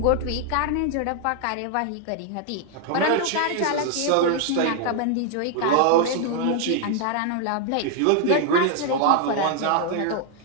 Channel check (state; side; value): different; both; correlation 0.00